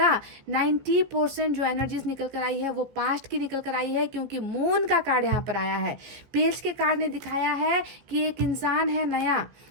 90% जो एनर्जीज निकल कर आई है वो पास्ट की निकल कर आई है, क्योंकि मून का कार्ड यहाँ पर आया है। पेज के कार्ड ने दिखाया है कि एक इंसान है नया,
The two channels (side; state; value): left; late; 15 ms